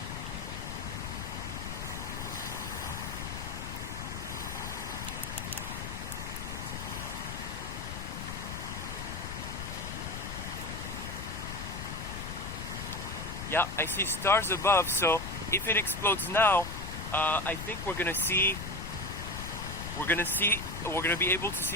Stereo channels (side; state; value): left; noise; rumble, 7 dB below the sound